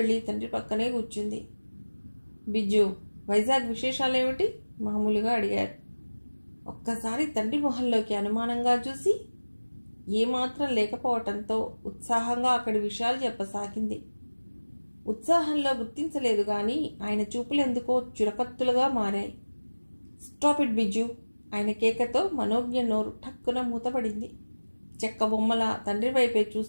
తండ్రి పక్కనే కూర్చుంది. బిజ్జు, వైజాగ్ విశేషాలేమిటి? మామూలుగా అడిగారు. ఒక్కసారి తండ్రి మొహంలోకి అనుమానంగా చూసి ఏమాత్రం లేకపోవటంతో ఉత్సాహంగా అక్కడి విషయాలు చెప్పసాగింది. ఉత్సాహంలో గుర్తించలేదు గాని ఆయన చూపులెందుకో చురకత్తులుగా మారాయి. Stop it Biju! ఆయన కేకతో మనోజ్ఞ నోరు ఠక్కున మూతపడింది. చెక్క బొమ్మల తండ్రి వైపే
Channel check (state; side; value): inverted; both; correlation -1.00